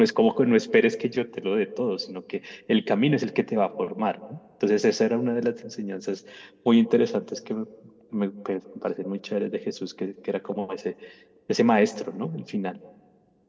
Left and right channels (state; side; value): identical; both; correlation 1.00